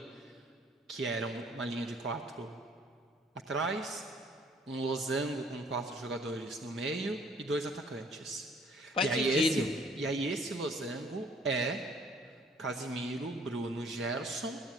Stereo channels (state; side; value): normal; both; correlation 0.59